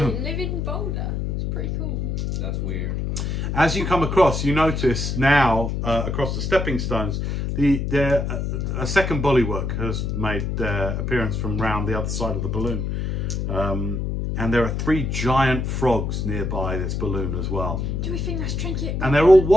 living boulder. It's pretty cool. that's weird. As you come across, you notice now across the stepping stones, a second bullywork has made their appearance from round the other side of the balloon. And there are 3 giant frogs nearby this balloon as well. Do we think that's Trinket? And they're all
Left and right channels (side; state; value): left; noise; hum, 1 dB below the sound